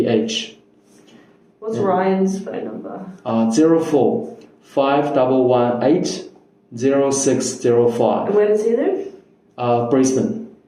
What's Ryan's phone number? 04 5118 0605. And where does he live? Brisbane.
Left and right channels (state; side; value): identical; both; correlation 1.00